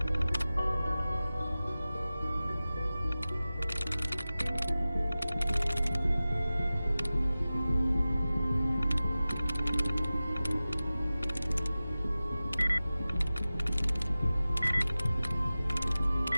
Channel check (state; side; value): inverted; both; correlation -0.96